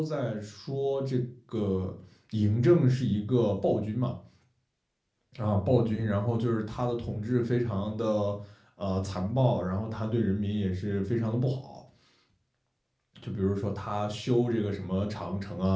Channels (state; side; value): identical; both; correlation 1.00